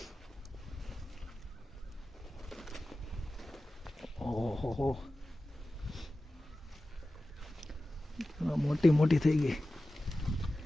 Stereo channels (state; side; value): normal; both; correlation 0.95